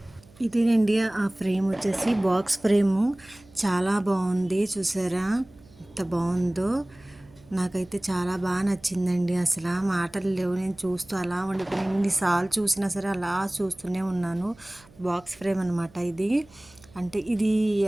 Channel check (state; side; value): noise; right; hum, 26 dB below the sound